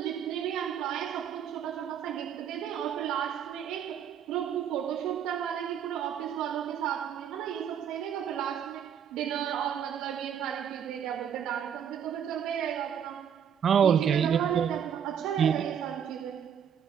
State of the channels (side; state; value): left; quieter; 8.5 dB